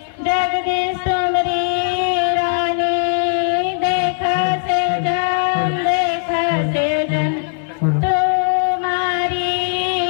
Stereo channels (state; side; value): silent; right; 59 dB below the other